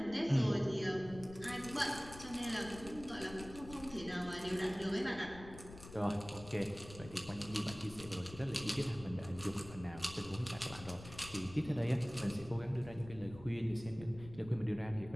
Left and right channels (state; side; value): noise; left; rumble, 15 dB below the sound